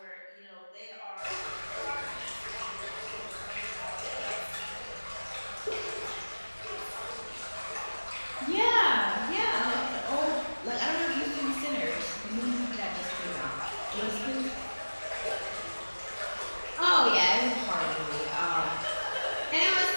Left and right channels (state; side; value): inverted; both; correlation -1.00